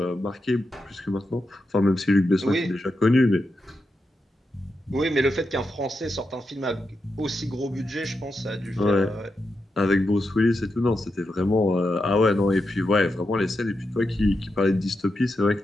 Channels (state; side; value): normal; both; correlation 0.87